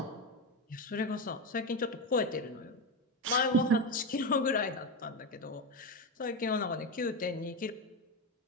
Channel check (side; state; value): both; normal; correlation 0.14